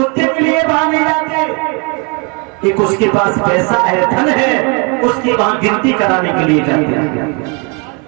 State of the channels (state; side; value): quieter; left; 31.3 dB